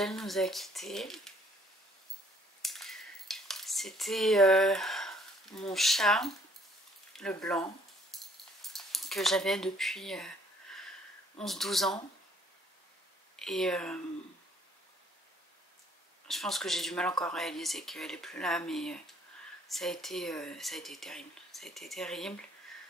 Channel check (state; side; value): normal; both; correlation 0.62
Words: nous a quittés. C'était mon chat, le blanc, que j'avais depuis 11-12 ans. Et je pense que j'ai du mal encore à réaliser qu'elle est plus là, mais ça a été terrible. Ça a été terrible.